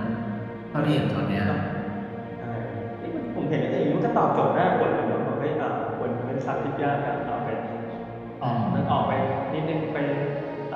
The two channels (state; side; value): identical; both; correlation 1.00